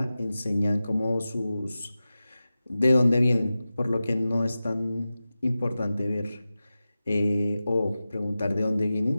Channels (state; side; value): inverted; both; correlation -0.95